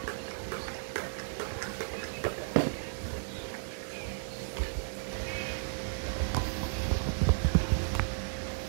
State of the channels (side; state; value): left; silent; digital silence